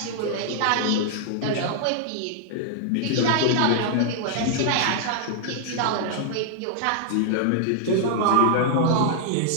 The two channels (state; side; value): different; both; correlation -0.01